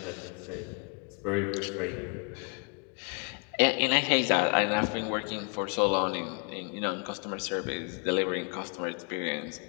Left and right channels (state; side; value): quieter; right; 37.3 dB